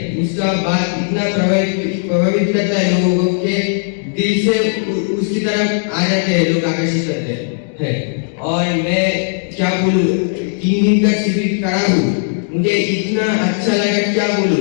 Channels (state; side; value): silent; right; digital silence